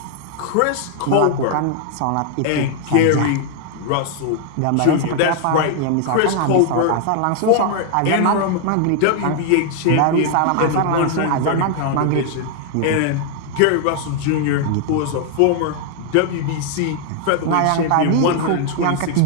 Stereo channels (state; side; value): different; both; correlation 0.00